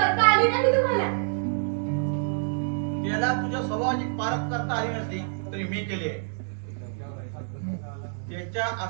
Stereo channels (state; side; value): silent; left; 60 dB below the other